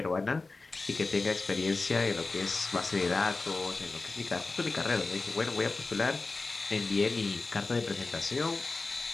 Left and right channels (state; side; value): quieter; right; 3.7 dB